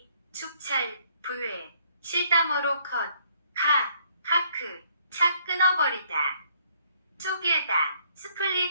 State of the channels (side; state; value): both; inverted; correlation -0.66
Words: 축찰 부회 실다머로 카크 차 끊어버리다 쪼개다